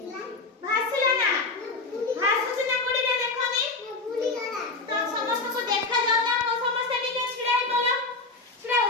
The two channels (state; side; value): quieter; right; 3.6 dB